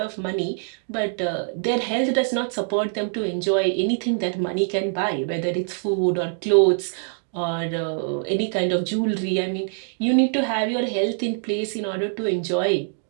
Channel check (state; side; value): silent; left; digital silence